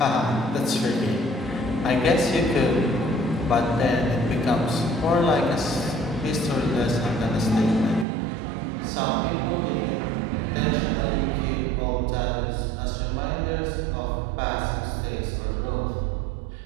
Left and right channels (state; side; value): drops out; left; at 8.1 s